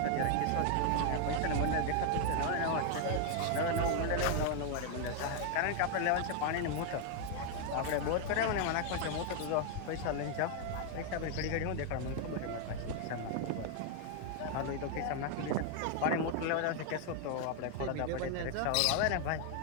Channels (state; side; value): different; both; correlation 0.00